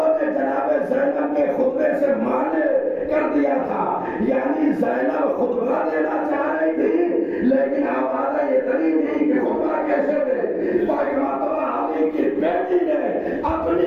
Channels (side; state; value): both; identical; correlation 1.00